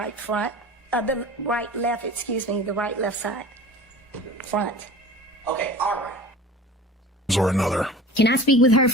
front, the right left, excuse me, the right left side. Front. Okay, all right. Or another. Can I speak with her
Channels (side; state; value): both; normal; correlation 0.39